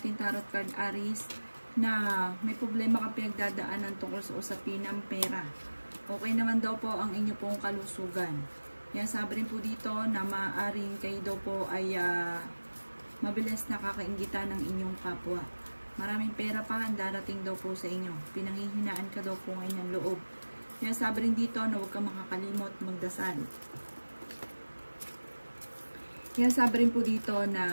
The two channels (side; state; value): both; inverted; correlation -1.00